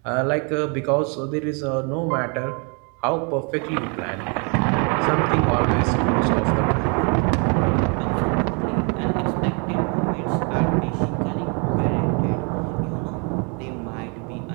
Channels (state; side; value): quieter; left; 35.6 dB